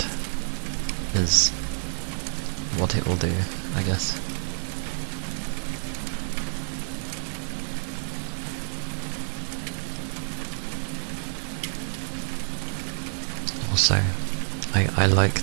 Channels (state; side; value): silent; left; 60 dB below the other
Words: is what it will do, I guess. Also, I